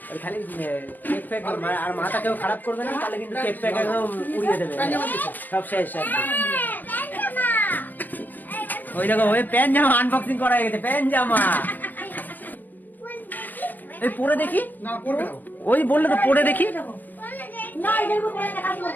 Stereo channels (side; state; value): right; late; 0.085 ms